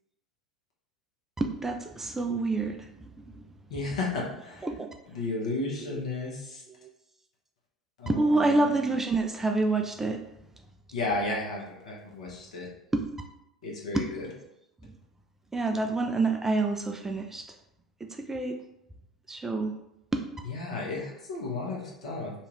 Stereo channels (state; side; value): normal; both; correlation 0.64